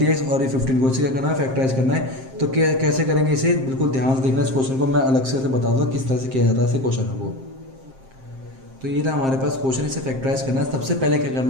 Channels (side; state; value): left; late; 7.6 ms